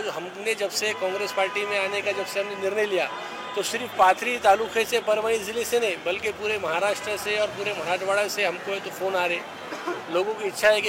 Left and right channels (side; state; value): both; identical; correlation 1.00